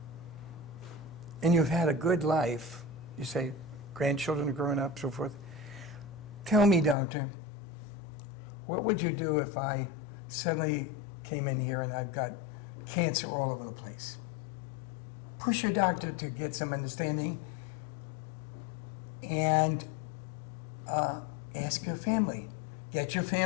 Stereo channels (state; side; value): drops out; right; at 7.0 s